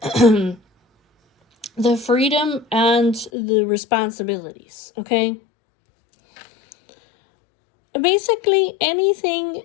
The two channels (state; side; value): drops out; right; at 3.3 s